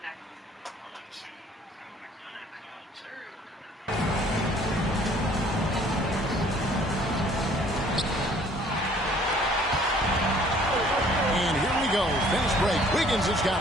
Fast break. Wiggins has got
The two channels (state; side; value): normal; both; correlation 0.57